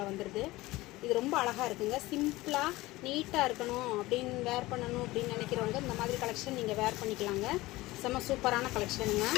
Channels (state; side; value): quieter; right; 19.2 dB